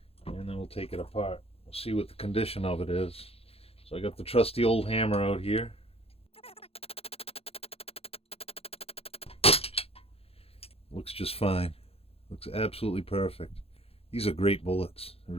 then we'll take it apart. We'll see what the condition of it is. So I got the trusty old hammer out here. Looks just fine. Looks absolutely perfect. These are great bullets. They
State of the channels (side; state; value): right; late; 0.28 ms